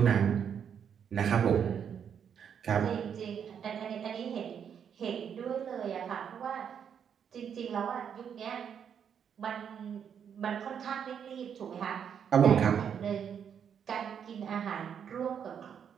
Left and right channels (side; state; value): left; quieter; 7.9 dB